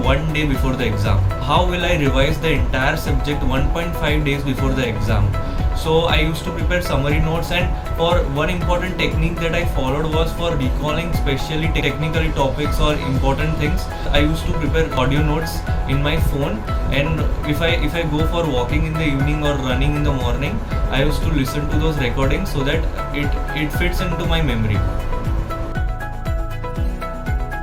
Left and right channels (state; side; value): identical; both; correlation 1.00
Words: day before the exam. How will I revise the entire subject 1.5 days before the exam. So I used to prepare summary notes, and for one important technique that I followed was for recalling especially technical topics or important things. I used to prepare audio notes in my phone, and if I go for walking in the evening or running in the morning, I used to listen to those recordings so that it fits into my memory.